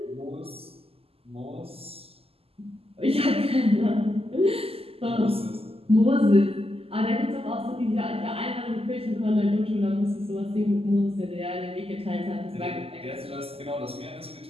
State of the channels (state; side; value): late; left; 0.28 ms